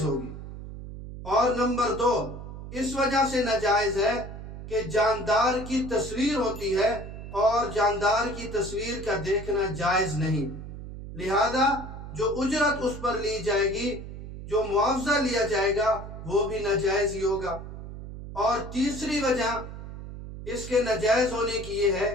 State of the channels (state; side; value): noise; right; hum, 11 dB below the sound